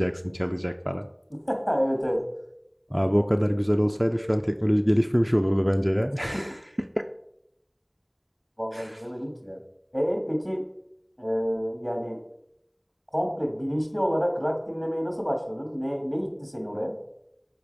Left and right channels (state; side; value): identical; both; correlation 1.00